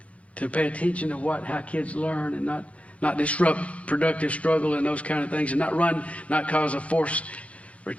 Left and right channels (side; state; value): right; late; 0.064 ms